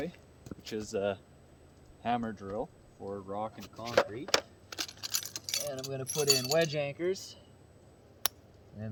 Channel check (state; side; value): identical; both; correlation 1.00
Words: which is a hammer drill for rock and concrete. And I'm gonna put in wedge anchors. And